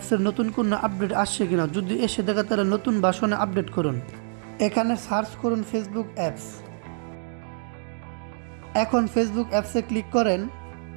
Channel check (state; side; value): silent; left; 61 dB below the other